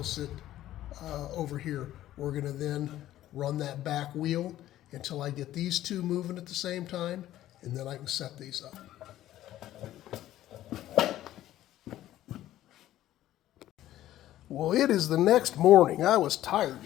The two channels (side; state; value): right; quieter; 13.6 dB